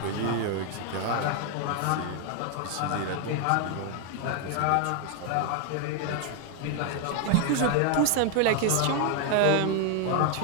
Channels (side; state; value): both; different; correlation 0.00